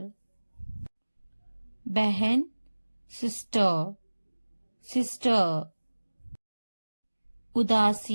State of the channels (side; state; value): both; inverted; correlation -1.00